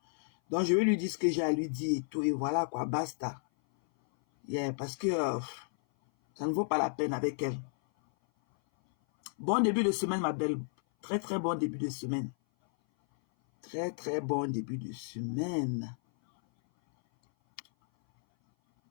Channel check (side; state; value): right; silent; 56 dB below the other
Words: Donc, je vais lui dire ce que j'ai à lui dire et tout. Et voilà, quoi, basta. Yeah, parce que ça ne vaut pas la peine avec elle. Bon début de semaine, ma belle. Très, très bon début de semaine. Très, très bon début de semaine.